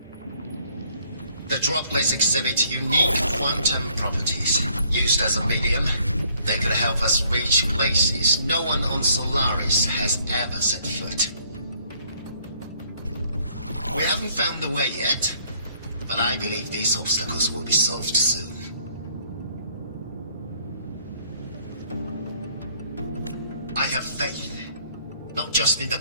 The droplets exhibit unique quantum properties. Used as a medium, they could help us reach places no one on Solaris has ever set foot. We haven't found the way yet, but I believe these obstacles will be solved soon. I have faith, not just in the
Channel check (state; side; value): inverted; both; correlation -0.64